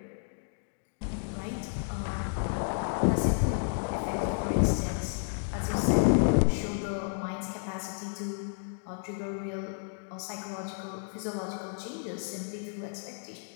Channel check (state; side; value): silent; right; digital silence